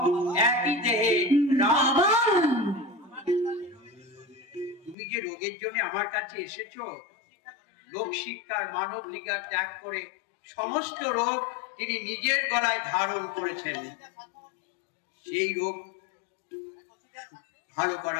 একই দেহে রাম। তুমি যে রোগের জন্য আমার কাছে এসেছো, লোক শিক্ষার মানব লিগার ত্যাগ করে সমস্ত রোগ তিনি নিজের গলায় ধারণ করেছেন। সেই রোগ ভালো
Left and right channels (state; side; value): drops out; right; at 5.0 s